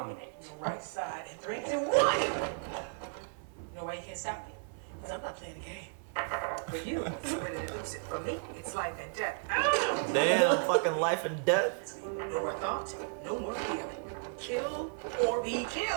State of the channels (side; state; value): left; silent; 55 dB below the other